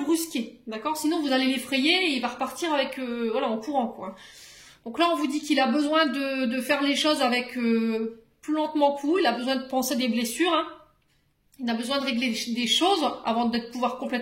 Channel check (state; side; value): identical; both; correlation 1.00